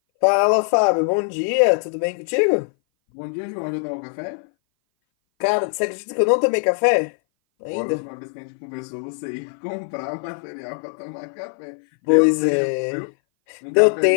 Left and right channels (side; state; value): right; silent; 59 dB below the other